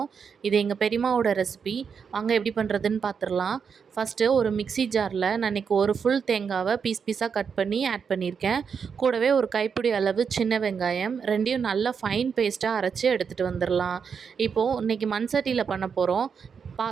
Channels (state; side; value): quieter; left; 6.4 dB